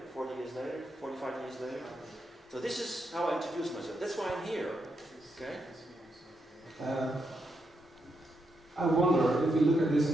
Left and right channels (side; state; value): both; normal; correlation 0.82